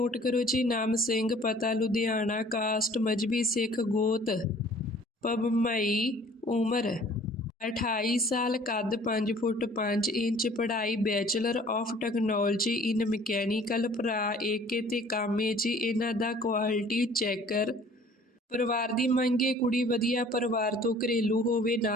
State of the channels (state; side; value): normal; both; correlation 0.52